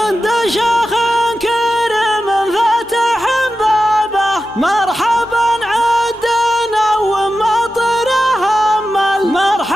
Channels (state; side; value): normal; both; correlation 0.92